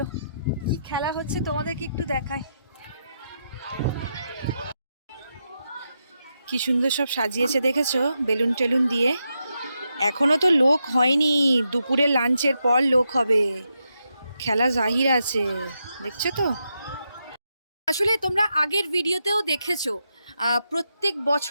কি খেলা হচ্ছে তোমাদেরকে একটু দেখাই। কি সুন্দর সব সাজিয়েছে দেখেছো, বেলুন টেলুন দিয়ে। এখনো তো লোক হয়নি, দুপুরে লাঞ্চের পর লোক হবে। খেলা জাহির আছে, দেখছো তো। আসলে তোমরা আগের ভিডিওতেও দেখেছো, প্রত্যেক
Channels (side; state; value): both; inverted; correlation -0.84